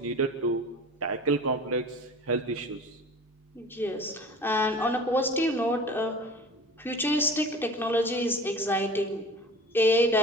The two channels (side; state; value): both; normal; correlation 0.40